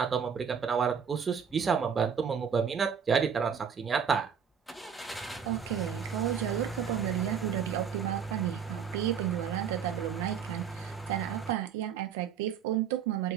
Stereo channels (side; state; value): left; quieter; 7.3 dB